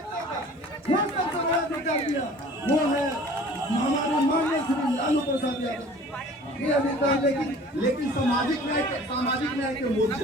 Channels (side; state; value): both; normal; correlation 0.47